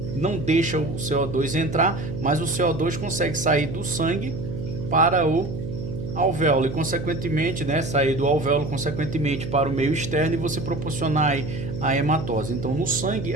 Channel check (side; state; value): right; noise; hum, 7 dB below the sound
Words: não deixa o CO2 entrar, mas o CO2 consegue sair do sangue para o alvéolo e, consequentemente, sair do alvéolo, consequentemente, para o meio externo e você proporcionar aí a hematose. Então, no sangue,